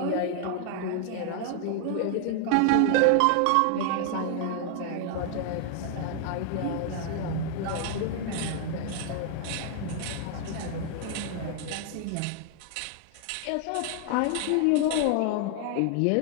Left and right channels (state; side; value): different; both; correlation 0.00